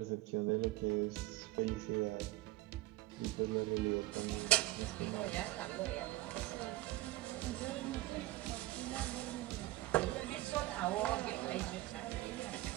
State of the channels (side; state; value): left; quieter; 16.8 dB